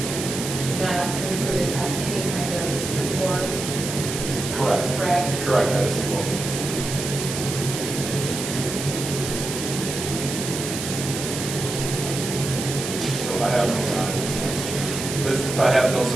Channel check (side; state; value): right; noise; hiss, 5 dB below the sound